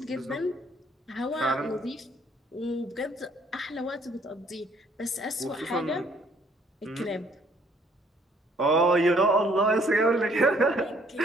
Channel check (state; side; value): normal; both; correlation 0.63